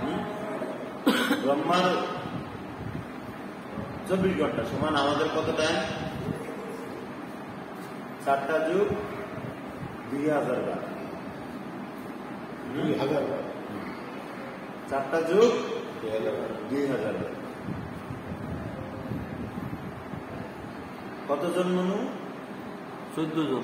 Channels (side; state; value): both; identical; correlation 1.00